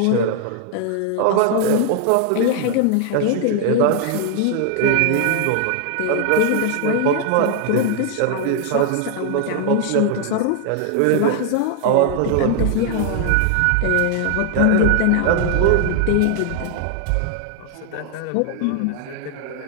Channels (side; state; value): both; different; correlation 0.00